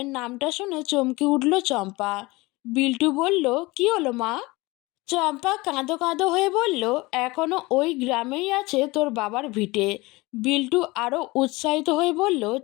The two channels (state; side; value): quieter; right; 22.5 dB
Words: নামটা শুনে চমকে উঠল চম্পা। বিল্টু বলল, কি হলো মা? চম্পা কাঁদো কাঁদো হয়ে বলল, এখনো ওই গ্রামেই আছে তোর বাবার ভিটে। বিল্টু আরও উৎসাহিত হয়ে বলল,